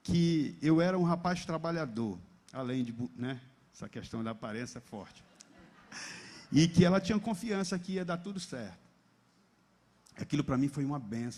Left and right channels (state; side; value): identical; both; correlation 1.00